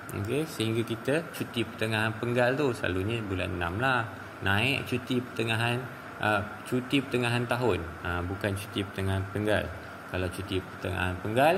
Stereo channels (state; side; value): identical; both; correlation 1.00